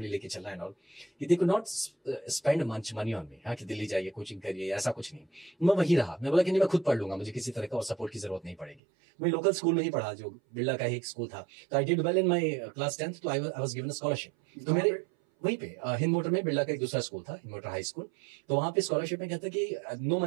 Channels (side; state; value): left; drops out; at 8.8 s